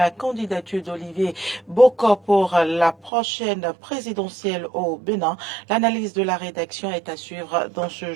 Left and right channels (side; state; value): left; drops out; at 3.1 s